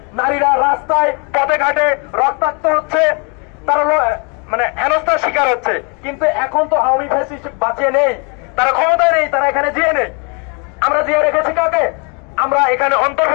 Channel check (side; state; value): right; quieter; 34.4 dB